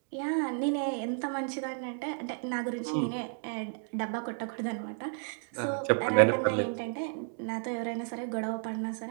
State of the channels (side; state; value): left; silent; 56 dB below the other